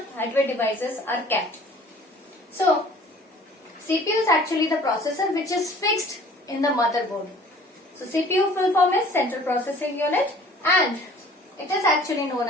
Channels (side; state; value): both; normal; correlation 0.50